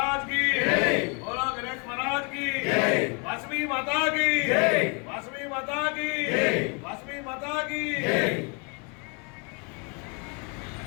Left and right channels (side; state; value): right; quieter; 34.4 dB